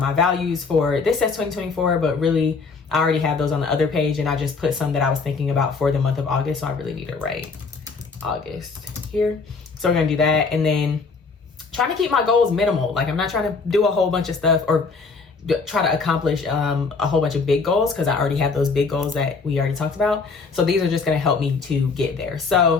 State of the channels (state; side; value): quieter; right; 4.6 dB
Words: values for this says 2024, but really I already have those on the other page, and I just put some that I was thinking about for the month of August. So I really need to write August here. So we're gonna do that. And then trying to keep my goals minimal. Like, I'm not trying to do a whole bunch of stuff or try to accomplish a whole bunch of big goals, because I already have those big goals that we already talked about. So these are just going to help me to get there.